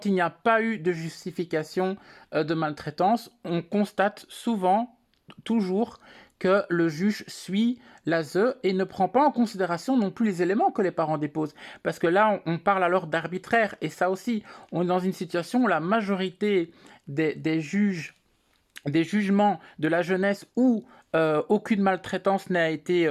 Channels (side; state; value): both; identical; correlation 1.00